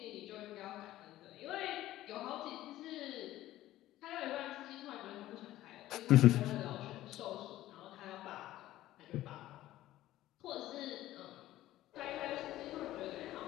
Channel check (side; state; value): right; quieter; 14.9 dB